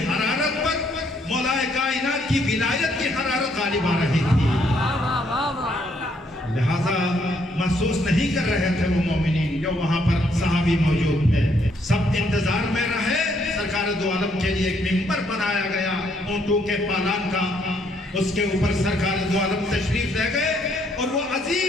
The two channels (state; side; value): normal; both; correlation 0.70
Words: پر مولا کائنات کی ولایت کی حرارت غالب آ رہی تھی، لہذا محسوس نہیں کر رہے تھے وہ مومنین جو وہاں پر صحابی موجود تھے۔ سب انتظار میں رہے، سرکار دو عالم کے لیے ایک ممبر بنایا گیا اونٹوں کے پالان کا، اس کے اوپر سرکار دو عالم تشریف لے گئے اور وہ